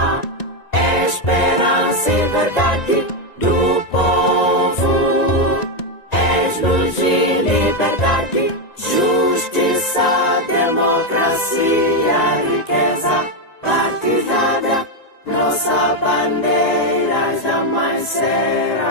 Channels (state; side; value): late; right; 1.9 ms